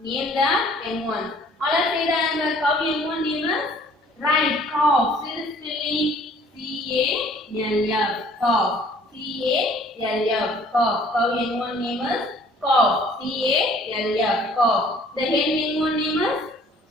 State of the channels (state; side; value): normal; both; correlation 0.56